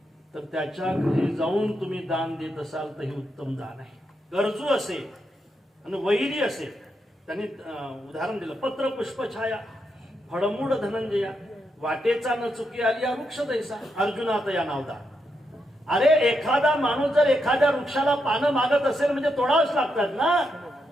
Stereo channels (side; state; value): both; normal; correlation 0.82